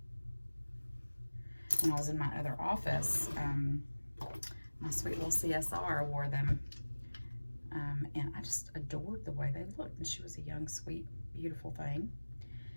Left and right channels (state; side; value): inverted; both; correlation -1.00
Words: When I was in my other office, my sweet little CSR wore them, and I just adored the way they looked. And she was a young, sweet, beautiful thing.